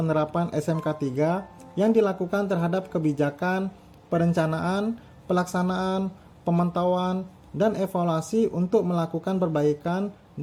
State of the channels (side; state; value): both; identical; correlation 1.00